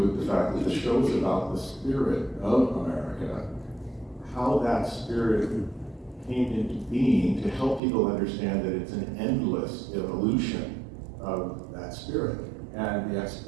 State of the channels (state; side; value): drops out; left; at 7.8 s